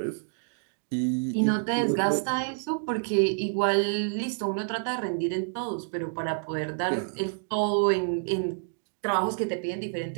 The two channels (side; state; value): left; silent; digital silence